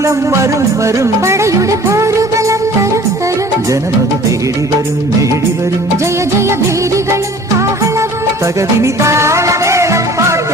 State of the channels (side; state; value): both; normal; correlation 0.48